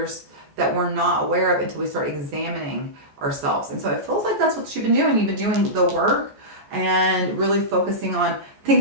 that we're not aware of until we start examining ourselves. And so it feels like that's what you've been doing. You've been doing the work and really focusing on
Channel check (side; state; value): left; late; 14 ms